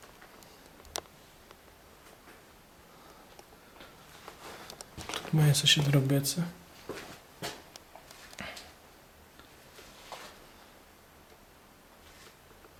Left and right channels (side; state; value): both; identical; correlation 1.00